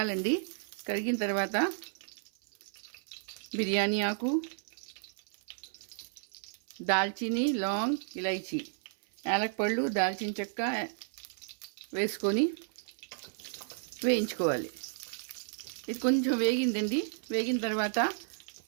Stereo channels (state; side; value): silent; left; 56 dB below the other